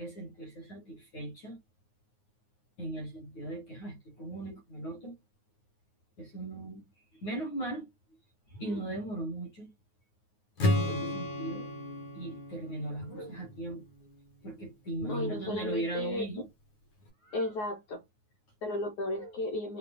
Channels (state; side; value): late; right; 9.5 ms